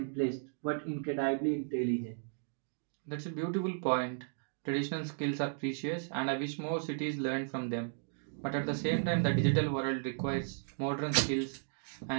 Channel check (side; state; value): left; silent; digital silence